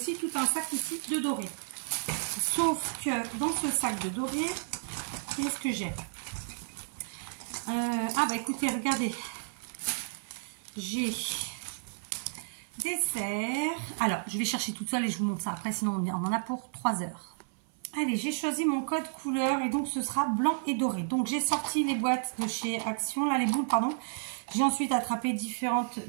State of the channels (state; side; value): silent; left; 57 dB below the other